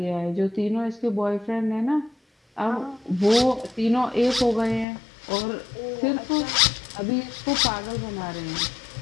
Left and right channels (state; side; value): drops out; right; at 4.9 s